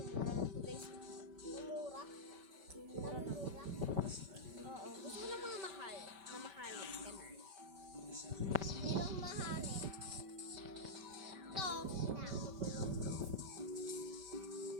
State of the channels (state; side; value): late; left; 5.2 ms